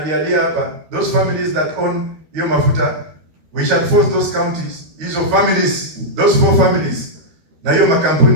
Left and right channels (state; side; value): late; left; 13 ms